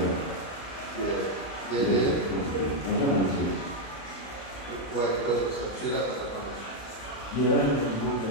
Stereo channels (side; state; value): right; late; 35 ms